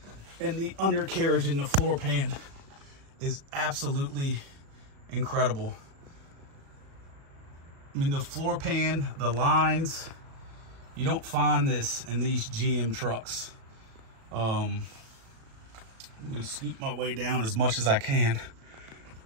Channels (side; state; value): left; late; 36 ms